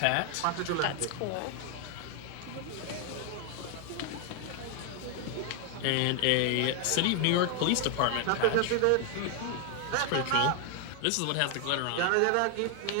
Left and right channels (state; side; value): different; both; correlation 0.00